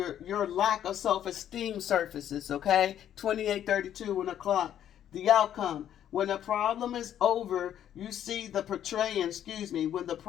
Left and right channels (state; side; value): quieter; right; 10.5 dB